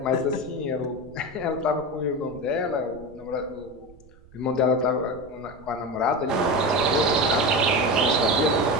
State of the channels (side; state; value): right; noise; rumble, 23 dB below the sound